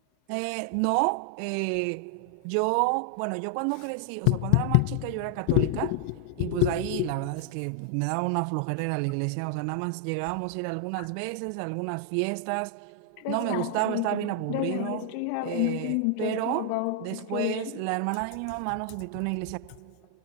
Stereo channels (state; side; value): different; both; correlation 0.00